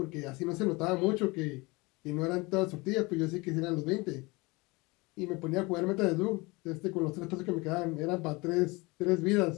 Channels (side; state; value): right; quieter; 24.8 dB